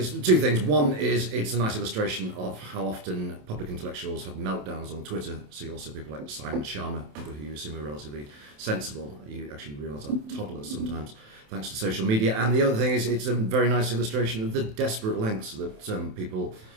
two things. One is it's a nice illustration of how often public intellectuals have meltdowns on Twitter. So you also people like Simon Sharma, people who you assume are relatively sensible. You actually realise are toddlers sometimes, thanks to social media. And the other thing is it's a very nice illustration of the desperate lengths that people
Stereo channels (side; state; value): left; late; 27 ms